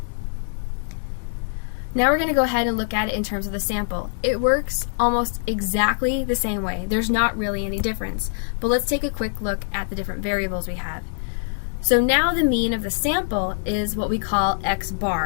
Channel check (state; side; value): silent; right; 58 dB below the other